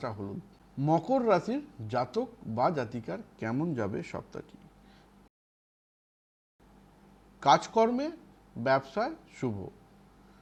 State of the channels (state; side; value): identical; both; correlation 1.00